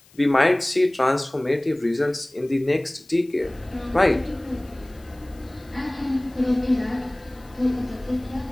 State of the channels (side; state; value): left; noise; hiss, 28 dB below the sound